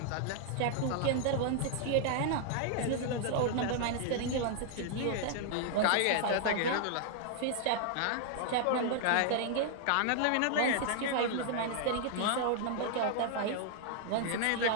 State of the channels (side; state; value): both; different; correlation -0.01